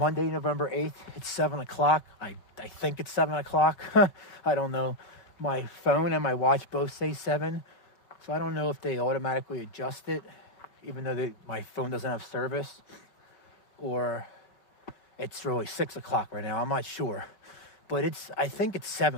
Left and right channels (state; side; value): late; right; 5.3 ms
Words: November 8th. It's 7 o'clock. I think it's 7 o'clock. I don't know. My phone and my watch both say 7, so I don't know if they automatically adjust it, even though my phone doesn't have service, or it's really 6 o'clock right now. I'm not sure. But I think it's